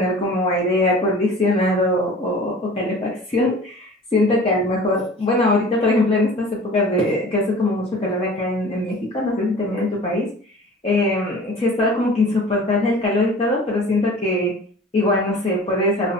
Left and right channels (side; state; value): both; normal; correlation 0.42